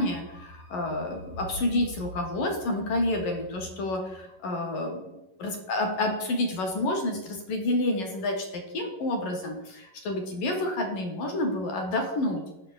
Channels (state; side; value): late; right; 11 ms